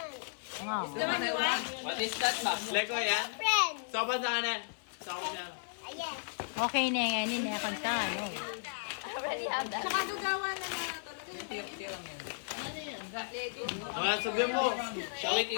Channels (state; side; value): silent; right; 55 dB below the other